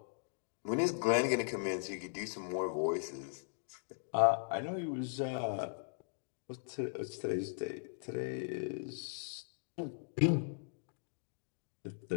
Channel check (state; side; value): silent; right; digital silence